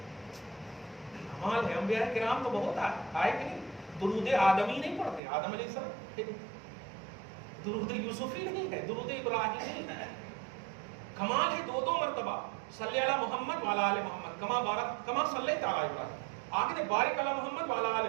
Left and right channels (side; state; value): left; drops out; at 5.2 s